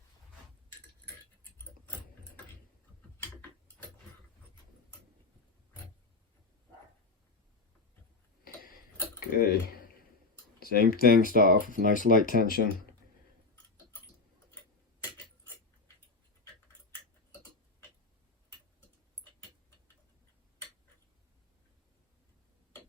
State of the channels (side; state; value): right; quieter; 3.8 dB